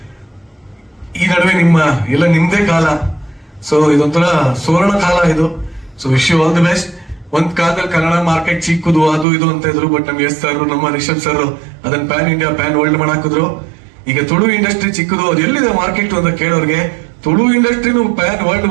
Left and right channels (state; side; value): drops out; left; at 9.2 s